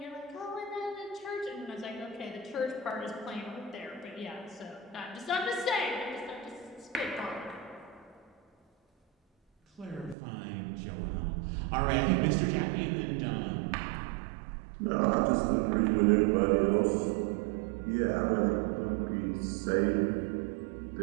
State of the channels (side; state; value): left; drops out; at 10.2 s